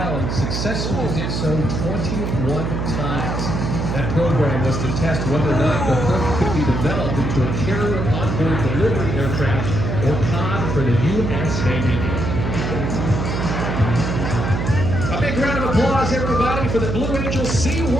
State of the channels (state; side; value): noise; right; hum, 2 dB below the sound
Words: and successfully did so 21 times. That program was to test whether or not the Herc could be developed into a carrier onboard delivery aircraft or COD for the U.S. Navy. A big round of applause, everybody, for the Blue Angel